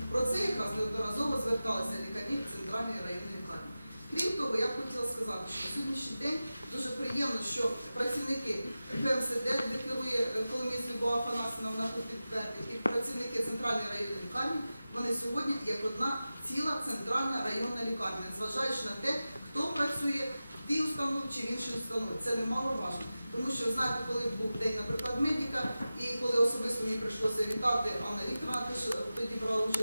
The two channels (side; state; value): both; inverted; correlation -0.94